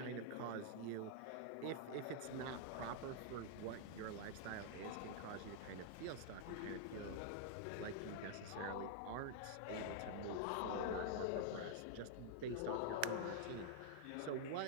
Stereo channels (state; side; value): different; both; correlation -0.01